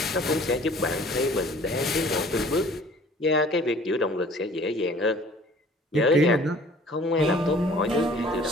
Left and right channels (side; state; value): both; normal; correlation 0.51